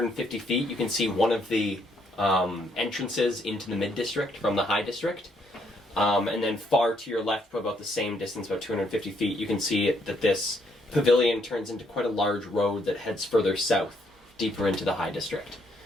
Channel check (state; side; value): normal; both; correlation 0.72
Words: feet, you can see one of the entrances into the mid-district from the high district. And then far to your left, probably about the same distance, about 250 feet, you can see that this pavilion turns into quite a large road that heads further south, deeper into the high district.